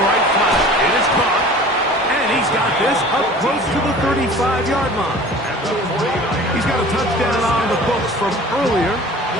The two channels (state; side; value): normal; both; correlation 0.43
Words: flat. It is caught. And he's got this up close to the 35-yard line. He's got a touchdown on the books from earlier,